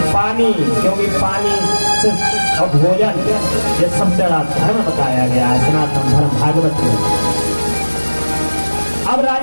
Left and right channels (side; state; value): both; inverted; correlation -1.00